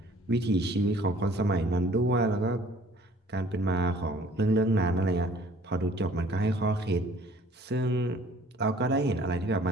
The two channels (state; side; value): normal; both; correlation 0.54